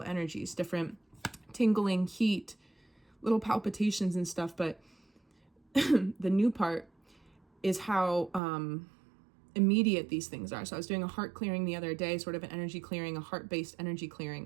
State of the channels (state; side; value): drops out; left; at 8.4 s